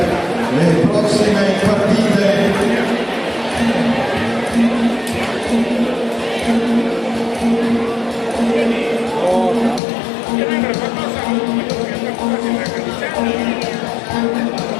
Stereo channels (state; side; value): drops out; right; at 9.8 s